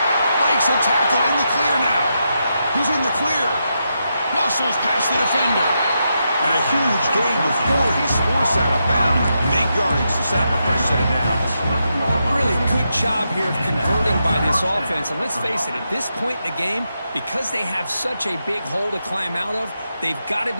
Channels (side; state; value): both; inverted; correlation -0.84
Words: Breaks a tackle in the clear now. He's in the clear. Muscles past the defender. And a huge gain before he's forced out of bounds. Big yardage to set up a fresh set of downs. Really good job here of converting by this offense. And let's face it, at this point in the game, because they have such a big hole to climb out of, they've got to